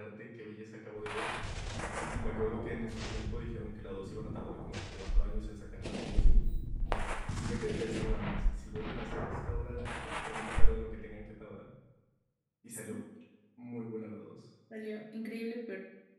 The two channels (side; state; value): both; identical; correlation 1.00